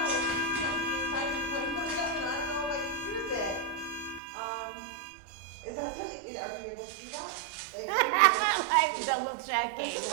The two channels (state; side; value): drops out; left; at 4.2 s